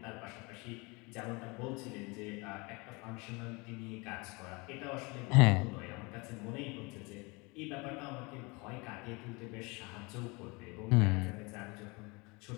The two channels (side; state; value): right; quieter; 27.2 dB